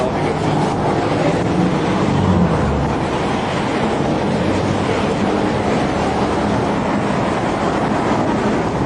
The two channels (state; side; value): identical; both; correlation 1.00